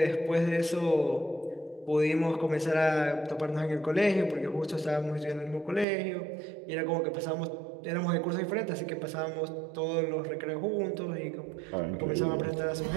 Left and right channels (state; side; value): drops out; left; at 5.9 s